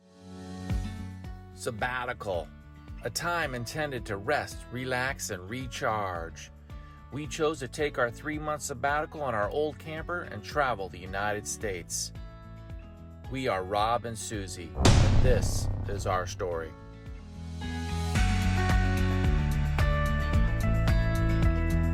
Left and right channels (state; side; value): identical; both; correlation 1.00